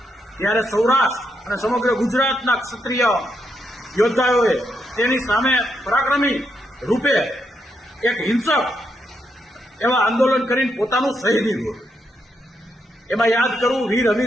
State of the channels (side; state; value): both; normal; correlation 0.80